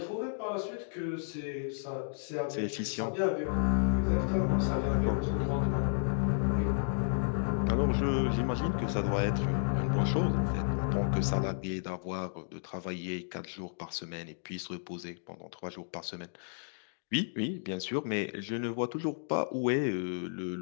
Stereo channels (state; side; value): silent; right; digital silence